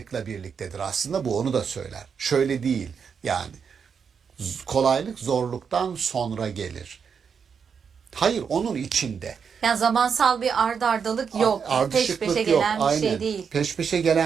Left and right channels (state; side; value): quieter; left; 6.5 dB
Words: birliktedir. Aslında bu onu da söyler. Şöyle değil yani. Kolaylık zorluktan sonra gelir. Hayır, onun içinde. Yani zamansal bir ardalık yok. Peş Ardışıklık peşe yok. gelen bir Aynen. şey değil. Peş peşe